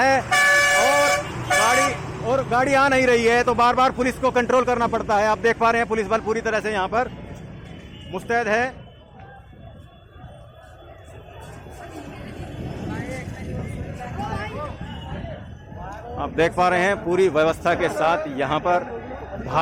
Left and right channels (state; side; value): identical; both; correlation 1.00